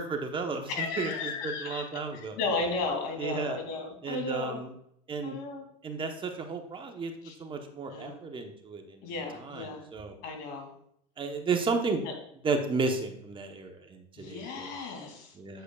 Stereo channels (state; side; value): normal; both; correlation 0.32